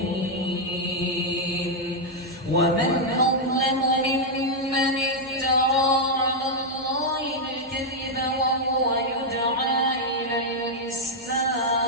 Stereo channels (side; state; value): both; normal; correlation -0.02